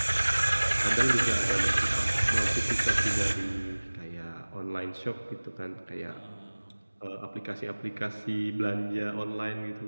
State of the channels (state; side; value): inverted; both; correlation -1.00